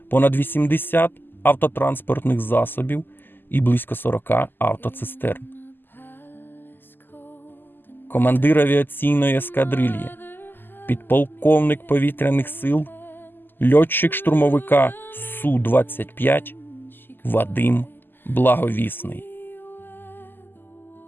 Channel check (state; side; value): late; right; 0.094 ms